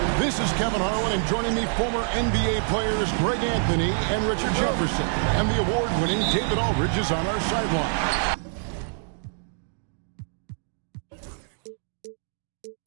This is Kevin Harlan, and joining me, former NBA players Greg Anthony and Richard Jefferson. And the award-winning David Aldridge is on our sideline.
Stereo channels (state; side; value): silent; left; digital silence